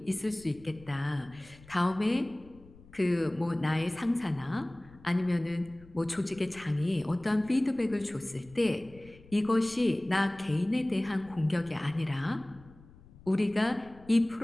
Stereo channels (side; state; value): left; noise; rumble, 23 dB below the sound